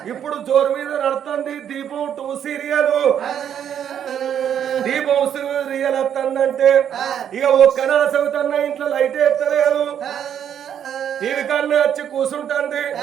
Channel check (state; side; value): quieter; left; 9.2 dB